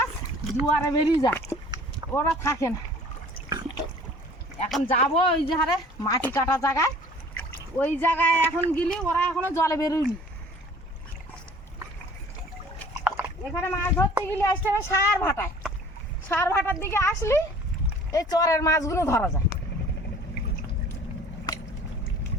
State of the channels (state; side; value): normal; both; correlation 0.49